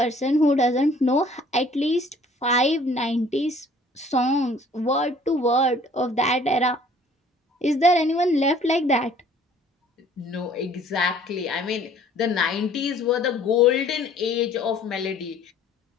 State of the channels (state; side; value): normal; both; correlation 0.55